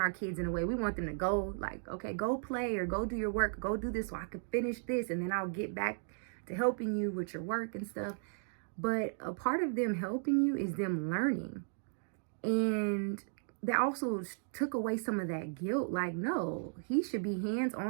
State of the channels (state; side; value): silent; left; digital silence